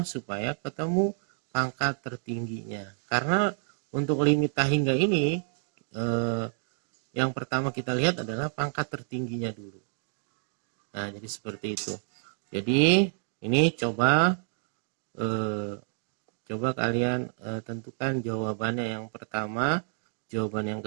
Supaya ketemu pangkat tertingginya. Karena untuk limit tahingga ini yang pertama kita lihat adalah pangkat tertingginya dulu. Nah, jadi seperti itu. Jadi ini coba kalian tentukan jawabannya yang pertama, jawaban yang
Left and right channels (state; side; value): silent; left; digital silence